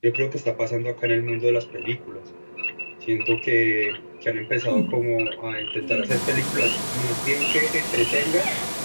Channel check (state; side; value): inverted; both; correlation -1.00